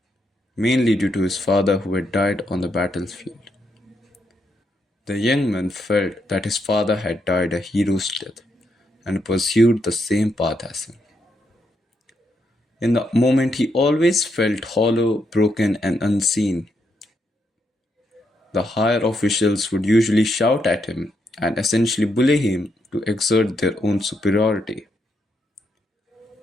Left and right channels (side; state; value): both; normal; correlation 0.79